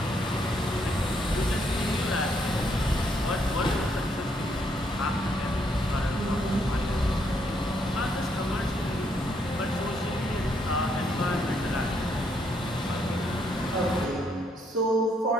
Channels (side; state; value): both; normal; correlation 0.73